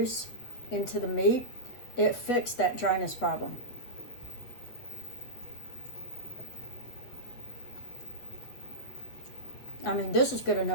into the meat, it fixed that dryness problem. I mean, this is good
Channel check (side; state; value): right; late; 8.3 ms